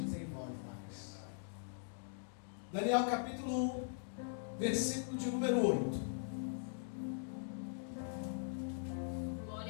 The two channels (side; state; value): right; silent; digital silence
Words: desenvolve mais. Daniel capítulo 1, versículo de número 8.